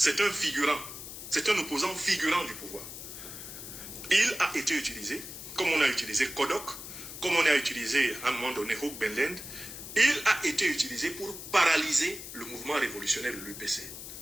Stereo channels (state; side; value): noise; left; hiss, 11 dB below the sound